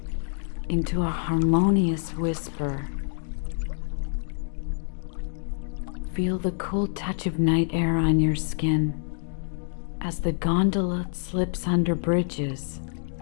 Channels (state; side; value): silent; right; 60 dB below the other